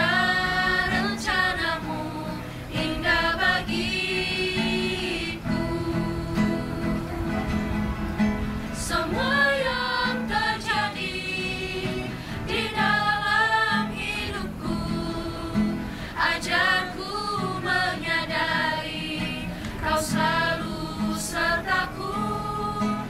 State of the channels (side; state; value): both; identical; correlation 1.00